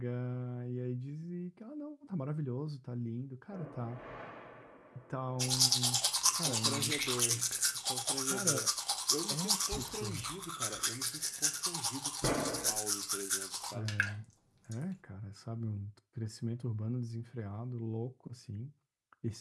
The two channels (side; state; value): both; identical; correlation 1.00